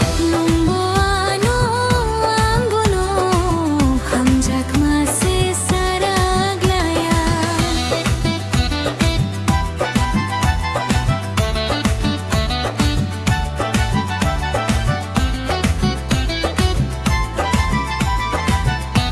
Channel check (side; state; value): both; identical; correlation 1.00